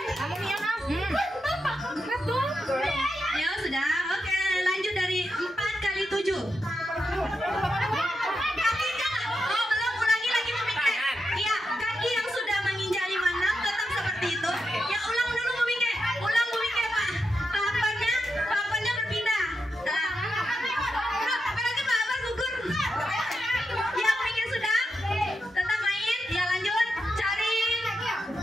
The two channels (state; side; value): normal; both; correlation 0.86